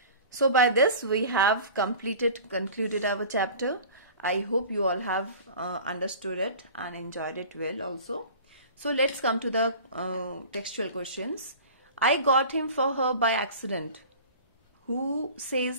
So by this we have concluded our chapter. I hope you all have understood it and enjoyed it well also. So let's come to the textual questions. I got him for her by accident. Who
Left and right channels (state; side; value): inverted; both; correlation -0.41